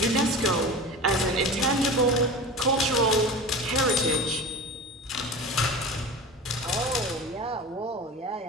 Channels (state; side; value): normal; both; correlation 0.32